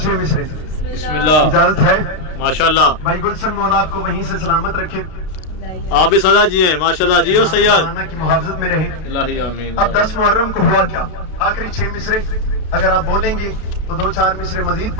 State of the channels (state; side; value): late; right; 32 ms